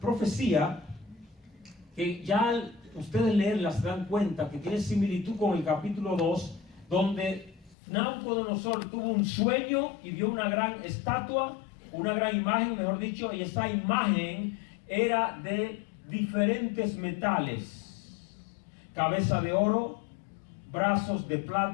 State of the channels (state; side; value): drops out; right; at 7.8 s